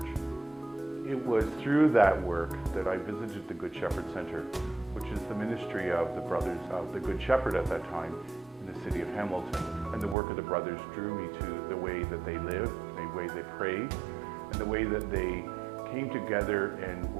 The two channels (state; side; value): drops out; left; at 10.2 s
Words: It was through that work that I visited the Good Shepherd Center, which is the ministry of the Brothers of the Good Shepherd at that time in the city of Hamilton. And the work of the brothers drew me to the way that they lived, the way they prayed, and the way that they came together and